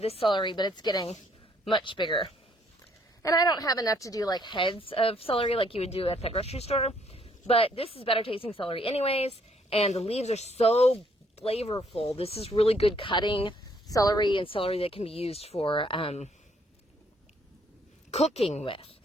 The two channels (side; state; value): both; normal; correlation 0.67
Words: celery, but it's getting much bigger. And I don't have enough to do like heads of celery like you would do at the grocery store. But this is better tasting celery anyways. And the leaves are so flavorful. This is really good cutting celery, and celery that can be used for cooking with,